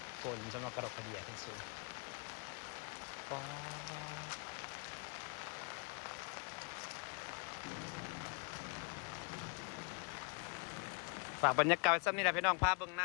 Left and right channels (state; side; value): quieter; right; 35.7 dB